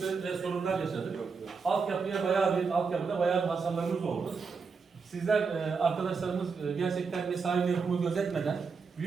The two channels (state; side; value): quieter; left; 5.2 dB